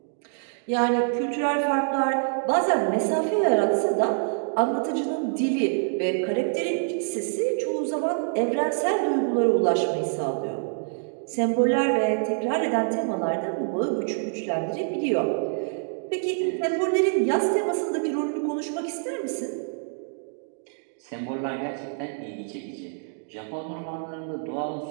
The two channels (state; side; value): silent; left; digital silence